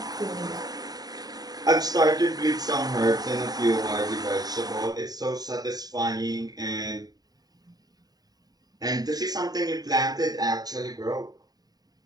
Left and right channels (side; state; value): left; late; 0.19 ms